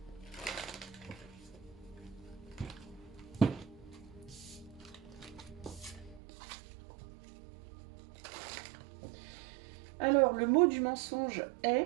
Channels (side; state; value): left; drops out; at 6.2 s